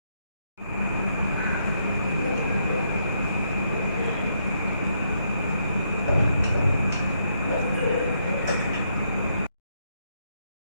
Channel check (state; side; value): inverted; both; correlation -0.76